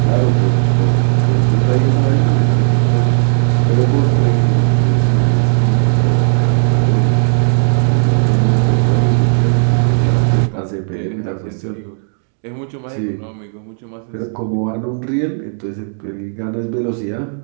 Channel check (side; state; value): left; silent; 67 dB below the other